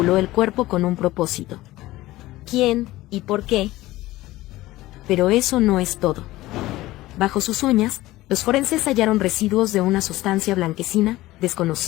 el cuerpo con un propósito. ¿Quién y por qué? Pero eso no es todo. Bajo sus uñas, los forenses hallaron residuos de una sustancia blanquecina,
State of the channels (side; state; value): right; quieter; 17.4 dB